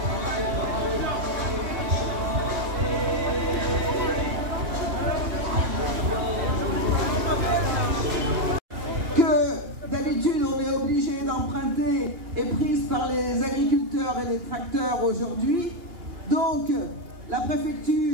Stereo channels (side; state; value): left; late; 2.8 ms